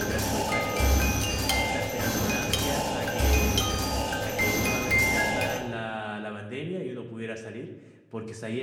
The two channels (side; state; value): both; identical; correlation 1.00